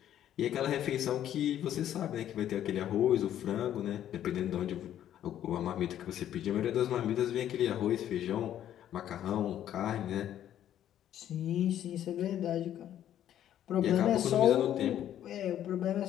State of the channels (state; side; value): quieter; right; 11.1 dB